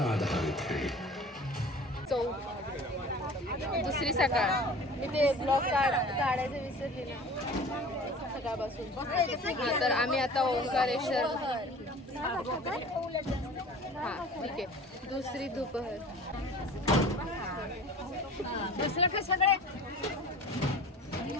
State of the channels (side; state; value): both; normal; correlation 0.42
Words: आधारित है. दुसरी सकाळ. मी ते ब्लॉग काढायचं विसरली ना सकाळपासून. तर आम्ही आता ओंकारेश्वर. हां ठीक आहे. दुसरी दुपार. दुसरं का सगळे